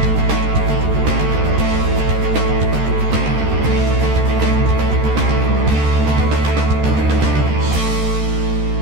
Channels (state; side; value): late; left; 13 ms